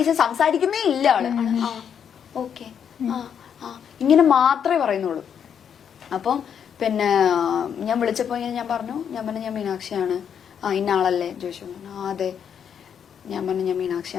സംസാരിക്കുന്നേ ഇല്ല ആള്. ആ ഓക്കെ ഇങ്ങനെ മാത്രമേ പറയുന്നുള്ളൂ. അപ്പം പിന്നെ ഞാൻ വിളിച്ചപ്പോൾ ഞാൻ പറഞ്ഞു ഞാൻ മീനാക്ഷിയാണ്. ഇന്ന ആളല്ലേ ചോദിച്ചു. അതെ. ഞാൻ പറഞ്ഞു ഞാൻ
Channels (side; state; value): right; quieter; 8.0 dB